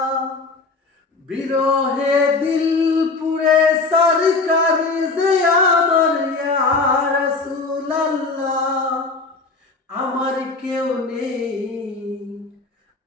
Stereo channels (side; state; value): right; quieter; 3.8 dB